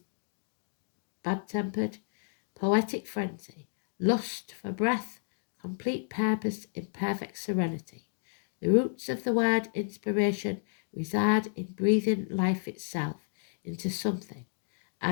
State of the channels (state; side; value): silent; right; digital silence